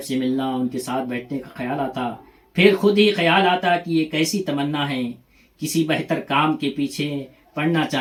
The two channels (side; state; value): both; identical; correlation 1.00